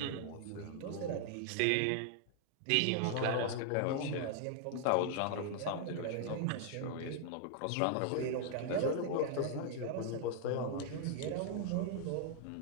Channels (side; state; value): both; different; correlation 0.00